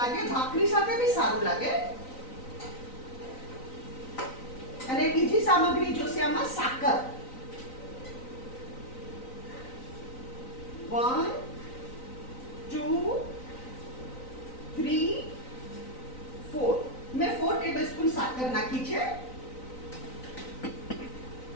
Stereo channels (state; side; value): late; right; 3.9 ms